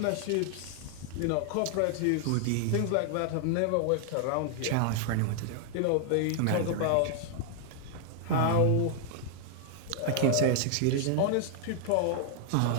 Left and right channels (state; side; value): different; both; correlation 0.00